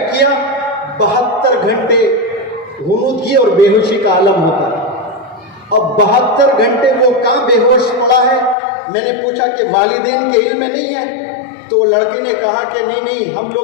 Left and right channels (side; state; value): right; drops out; at 8.6 s